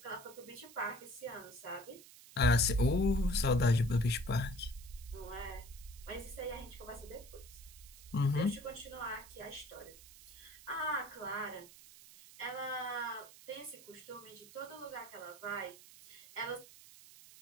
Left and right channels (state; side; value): noise; right; hiss, 19 dB below the sound